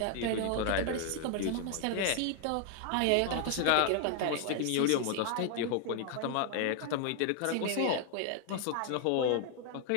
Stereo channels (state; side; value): different; both; correlation 0.00